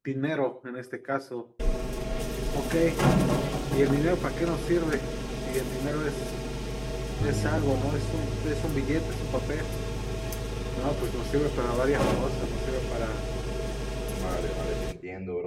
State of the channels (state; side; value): identical; both; correlation 1.00